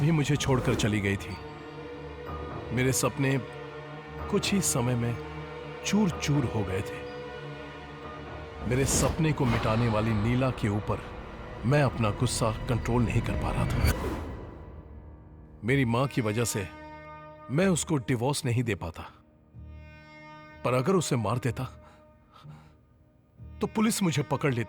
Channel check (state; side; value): identical; both; correlation 1.00